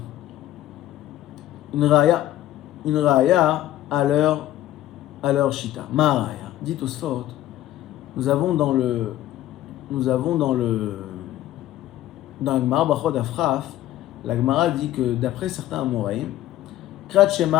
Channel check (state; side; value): quieter; right; 13.8 dB